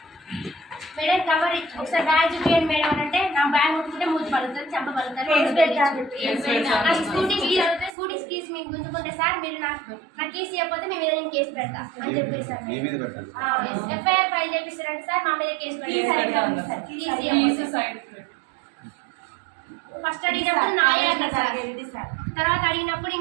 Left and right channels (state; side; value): drops out; left; at 7.9 s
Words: మేడం కవర్ ఒకసారి బ్యాగ్ చూపించండి మేడం అని అంటే నా బ్యాగ్ ముట్టుకుంటే మూతి పలుకుతుంది చెంప పలుకుతుంది స్కూటీ కీస్ అవుతుంది స్కూటీ కీస్ మీకు గుంజుకుంటే సార్ మీరు నా కీస్ ఇవ్వకపోతే మేము ఏదైనా కేసు పెడతా అని చెప్పేసి సార్ ఎఫ్ఐఆర్ ఫైల్ చేపిస్తారంటే సార్ మా మీద కేసు పెడతారు ఫస్ట్ అడిగినప్పుడు నాయే అన్నారు సార్ తర్వాత అడిగినప్పుడు